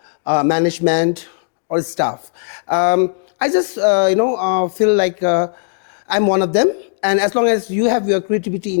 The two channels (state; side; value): silent; right; digital silence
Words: management or staff. I just, feel like I'm one of them. And as long as you have your creativity